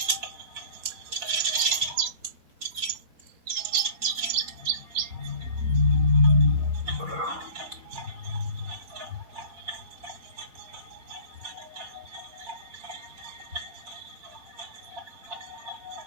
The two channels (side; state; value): left; late; 4.5 ms